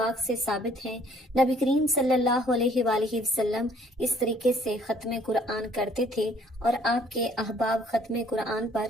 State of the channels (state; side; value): normal; both; correlation 0.60